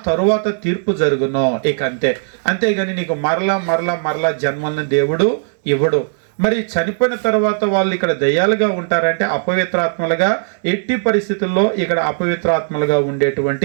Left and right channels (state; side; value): silent; left; 61 dB below the other